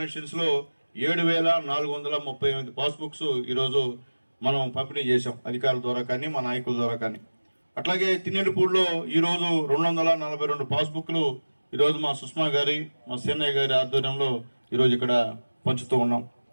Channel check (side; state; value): both; inverted; correlation -1.00